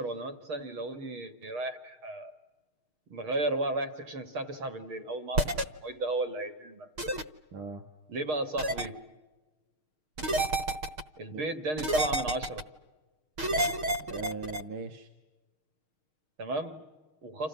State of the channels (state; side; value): late; left; 6.5 ms